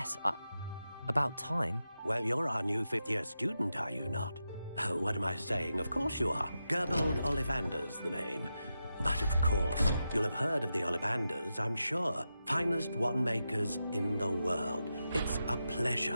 about time? Well, you're our new fifth-year student, are you not? Oh, what am I saying? Of course you are. Gerbold Ollivander's the name. But of course, you'll have heard of the Ollivanders, I'm sure. Finest wand makers in the world. It's a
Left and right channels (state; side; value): inverted; both; correlation -0.89